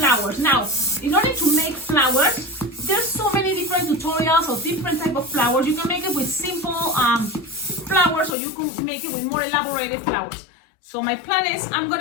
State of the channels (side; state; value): right; drops out; at 8.3 s